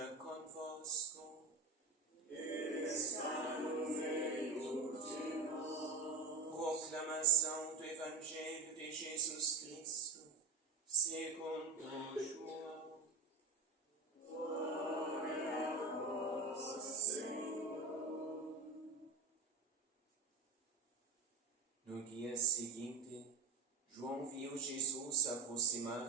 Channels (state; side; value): quieter; left; 4.2 dB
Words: convosco. Está no meio de nós. Proclamação do Evangelho de Jesus Cristo, segundo João. Glória a vós, Senhor. No dia seguinte, João viu Jesus